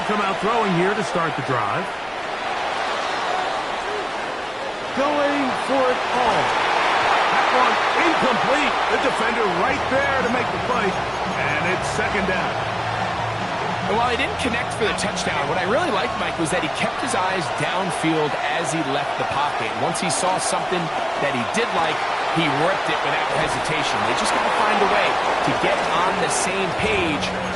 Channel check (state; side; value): identical; both; correlation 1.00